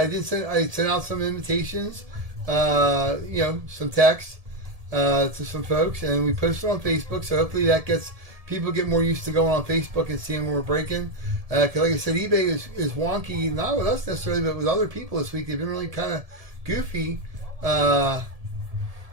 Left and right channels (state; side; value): late; left; 1.7 ms